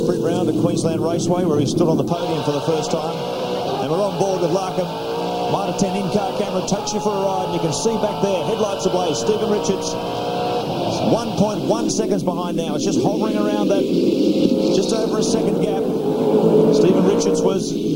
Round at Queensland Raceway, where he stood on the podium for the first time. And we're on board with Larkham. Mitre 10 in-car camera takes you for a ride, and you can see back there, headlights ablaze, Stephen Richards. 1.1 seconds behind now. It's just hovering around that, just over a second gap. Stephen Richards was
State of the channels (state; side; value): identical; both; correlation 1.00